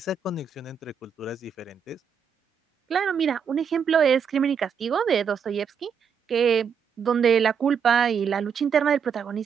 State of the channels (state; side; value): quieter; left; 6.8 dB